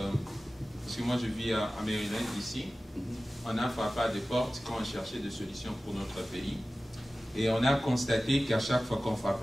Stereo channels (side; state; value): both; normal; correlation 0.96